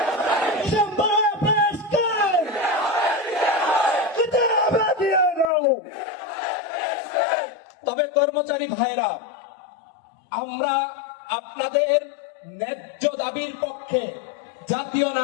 তবে কর্মচারী ভাইরা, আমরা আপনাদের ন্যায্য দাবির পক্ষে জাতীয়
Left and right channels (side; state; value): right; drops out; at 5.5 s